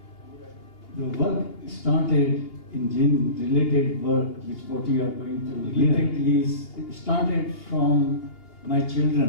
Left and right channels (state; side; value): late; right; 2.8 ms